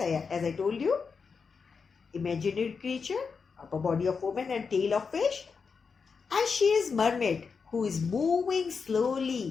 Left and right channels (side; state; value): right; quieter; 5.4 dB